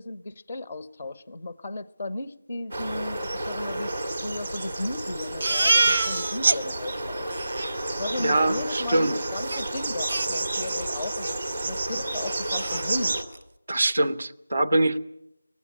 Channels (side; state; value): both; inverted; correlation -0.91